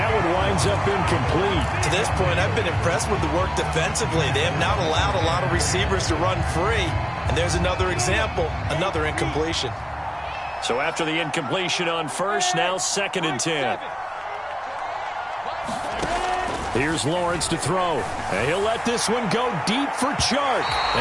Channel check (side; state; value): both; identical; correlation 1.00